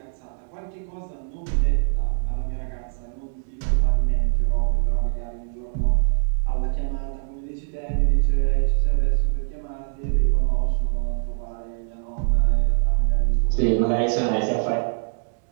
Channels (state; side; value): silent; left; digital silence